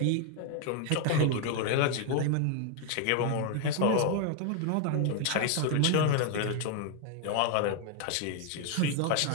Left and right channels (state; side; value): different; both; correlation 0.00